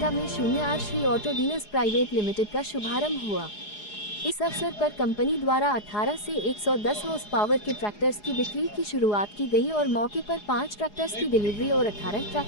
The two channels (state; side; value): late; right; 4.8 ms